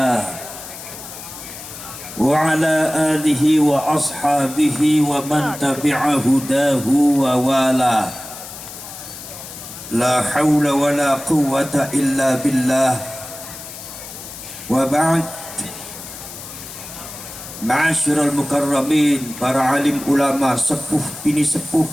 wa ala alihi wa ashabihi wa man tabi'a hudahu wa wala. La hawla wa la quwwata illa billah. Wa ba'd. Ma'asyiral mukarramin, para alim ulama, sepuh bini sepuh,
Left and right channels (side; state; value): left; noise; hiss, 13 dB below the sound